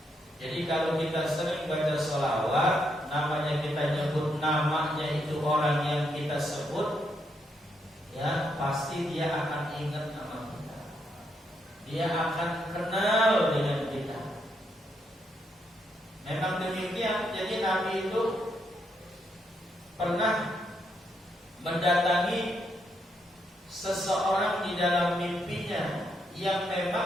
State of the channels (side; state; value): both; normal; correlation 0.78